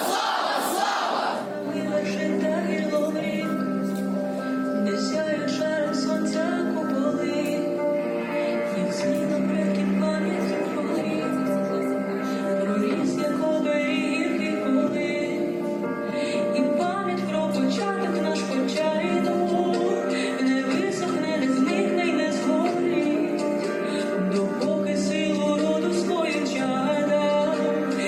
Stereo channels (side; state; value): both; identical; correlation 1.00